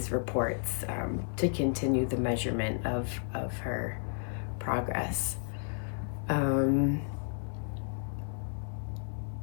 reports to continue the measurement of her progress.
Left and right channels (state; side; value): silent; right; 56 dB below the other